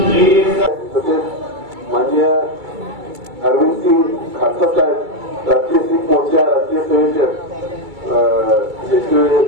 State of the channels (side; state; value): left; late; 2.3 ms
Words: माननीय अरविंद सिंग खालसा साहेब, राष्ट्रीय सिख मोर्चा राष्ट्रीय